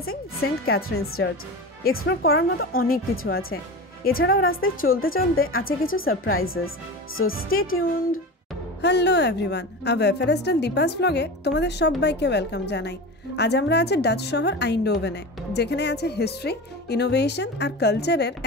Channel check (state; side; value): normal; both; correlation 0.28